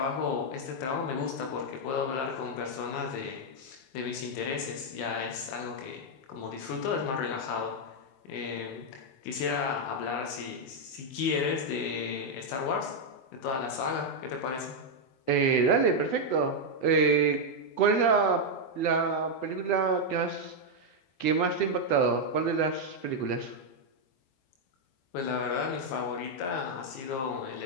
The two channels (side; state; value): right; late; 23 ms